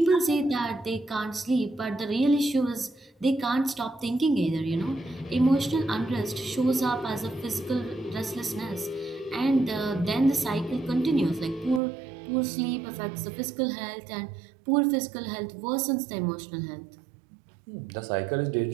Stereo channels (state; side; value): drops out; left; at 11.8 s